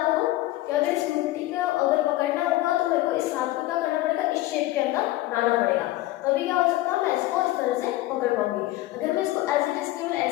करूं कि अगर इस मुट्ठी को अगर पकड़ना होगा तो मेरे को इस हाथ को क्या करना पड़ेगा, इस शेप के अंदर लाना पड़ेगा, तभी क्या हो सकता है, मैं इसको इस तरह से पकड़ पाऊंगी। अगर मैं इसको एज इट इज केवल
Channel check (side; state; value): right; quieter; 16.8 dB